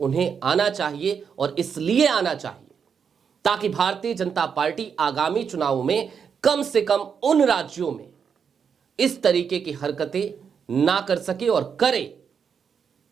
आना चाहिए, और इसलिए आना चाहिए ताकि भारतीय जनता पार्टी आगामी चुनावों में कम से कम उन राज्यों में इस तरीके की हरकतें ना कर सके, और करे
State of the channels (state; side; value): quieter; left; 6.8 dB